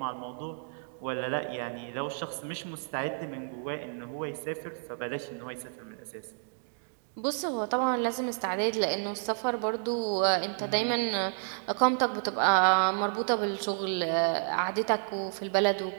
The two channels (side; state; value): left; silent; digital silence